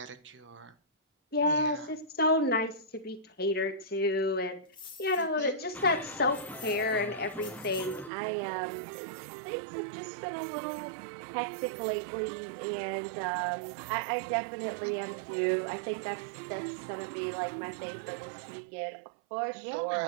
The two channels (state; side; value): drops out; left; at 8.1 s